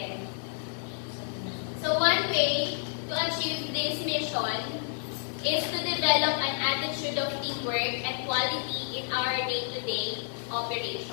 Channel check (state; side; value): silent; right; 58 dB below the other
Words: So, one way to achieve this mission is to develop an attitude of teamwork and quality in our day-to-day